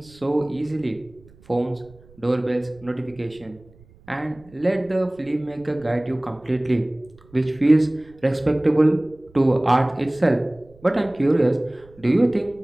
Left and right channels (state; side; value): noise; right; rumble, 26 dB below the sound